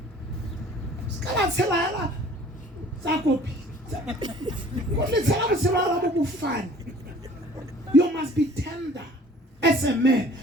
You must be tender as a man,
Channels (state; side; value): normal; both; correlation 0.51